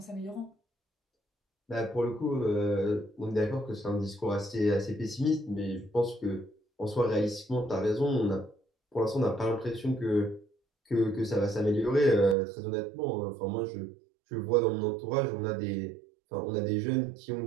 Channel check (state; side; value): drops out; left; at 12.4 s